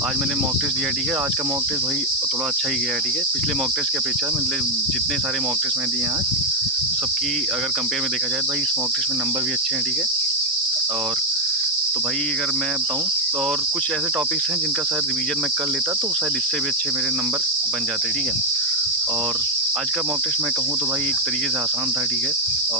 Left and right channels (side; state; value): both; normal; correlation 0.03